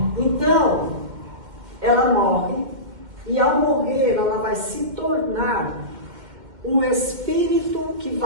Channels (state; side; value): late; left; 2.2 ms